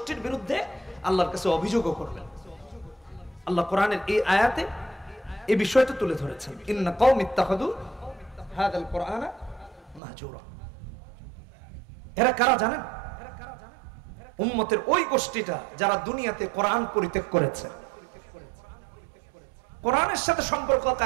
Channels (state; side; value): drops out; left; at 10.0 s